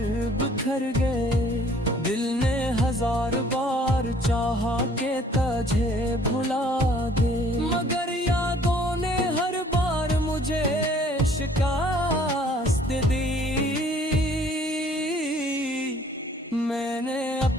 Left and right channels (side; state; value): both; normal; correlation 0.57